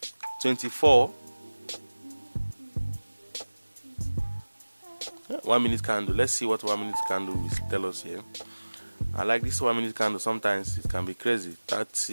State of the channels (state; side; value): inverted; both; correlation -1.00